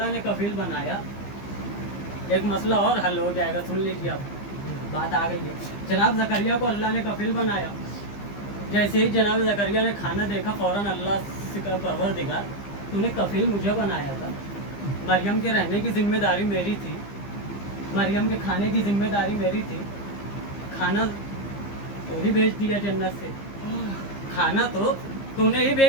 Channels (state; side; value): late; right; 15 ms